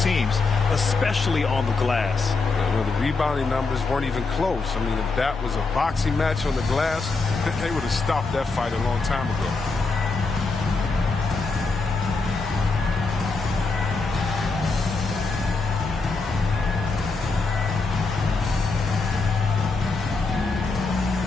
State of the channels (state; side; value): quieter; right; 4.0 dB